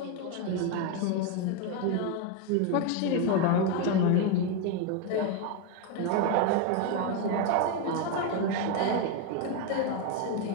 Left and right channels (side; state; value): both; different; correlation 0.02